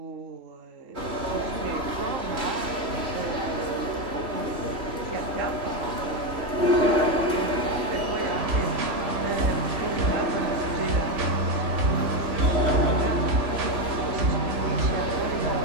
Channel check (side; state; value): left; late; 3.1 ms